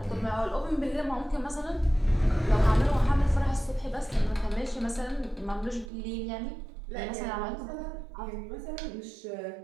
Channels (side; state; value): left; drops out; at 5.9 s